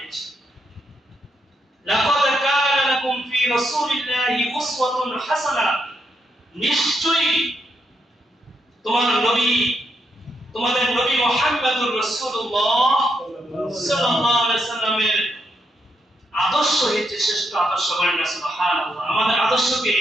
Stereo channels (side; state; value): both; normal; correlation 0.80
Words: লাকাদ কানা লাকুম ফি রাসূলিল্লাহি উসওয়াতুন হাসানাহ, নিশ্চয়ই তোমাদের নবী মুহাম্মদুর রাসূলুল্লাহ সাল্লাল্লাহু আলাইহি সাল্লামের আদর্শ হচ্ছে শ্রেষ্ঠ আদর্শ। বলেন না সুবহানাল্লাহ। আমাদের